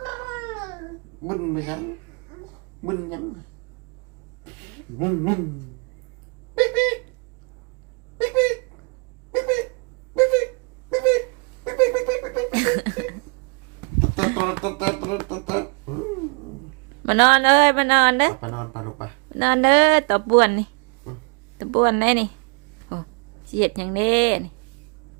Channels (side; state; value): left; quieter; 35.6 dB